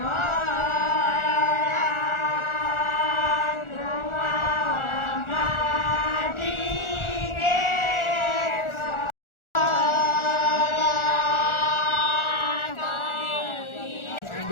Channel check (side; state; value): right; late; 1.4 ms